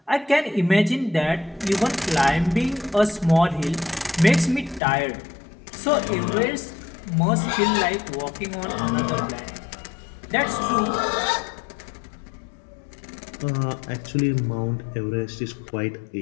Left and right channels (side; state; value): right; drops out; at 4.8 s